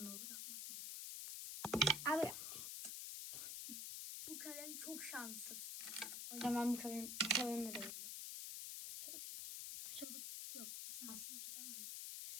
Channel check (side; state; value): left; noise; hiss, 4 dB below the sound